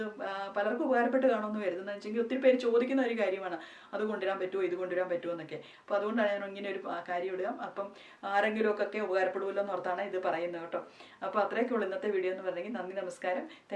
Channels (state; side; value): identical; both; correlation 1.00